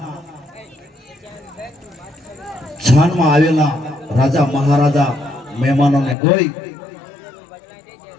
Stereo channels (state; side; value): drops out; right; at 6.2 s